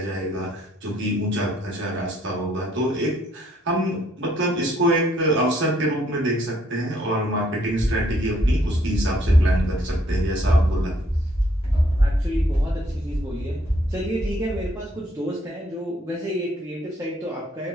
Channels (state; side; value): normal; both; correlation 0.67